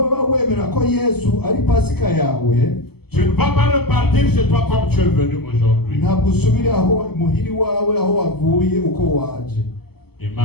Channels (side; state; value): right; late; 0.96 ms